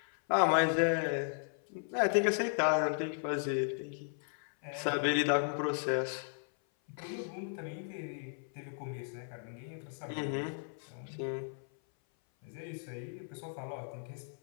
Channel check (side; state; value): right; silent; 54 dB below the other